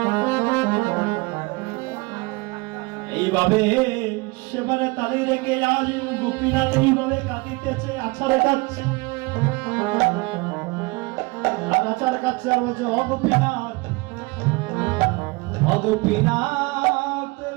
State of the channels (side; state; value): left; quieter; 25.1 dB